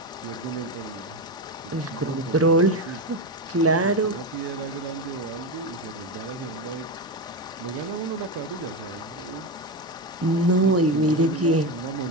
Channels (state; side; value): normal; both; correlation 0.15